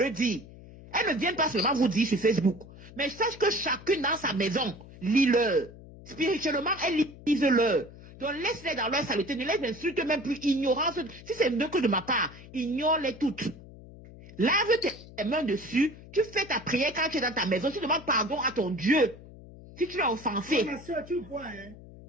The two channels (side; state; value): left; noise; hum, 18 dB below the sound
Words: dire. Elles ne viennent pas seulement vous dire sur Facebook. Mais sache que chacune dans sa maison, lis-le. Spirituellement, elles lisent-le. Donc laisse-les dans leur saleté. Ne les insulte même plus. Ignorance. Si c'est mieux que de ma part, ignore-les toutes. Lave tes mains dessus. Tu fais ta prière quand tu es dans ta maison. Tu demandes pardon à ton Dieu. Si tu l'as offensé. Ma soeur, tu vois, hein.